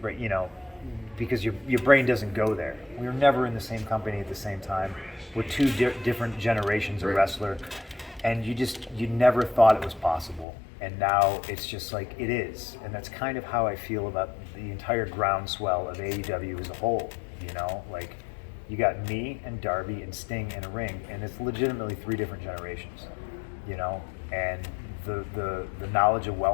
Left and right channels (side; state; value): right; drops out; at 10.5 s